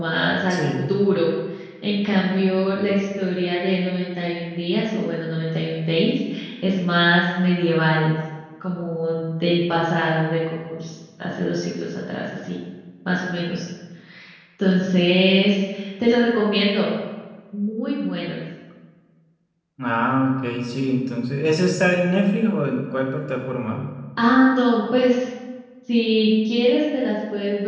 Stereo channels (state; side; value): identical; both; correlation 1.00